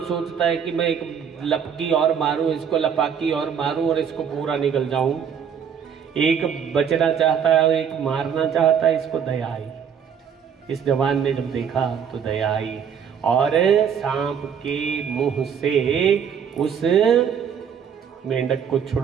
सोचता है कि मैं एक लपकी और मारूं, इसको लपाकी और मारूं और इसको पूरा निकल जाऊं। एक बचना चाहता है, एक मारना चाहता है, इसको दया आई। इस जवान ने जब देखा तो दया आई और सांप के मुंह से उस मेंढक को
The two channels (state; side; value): quieter; left; 7.6 dB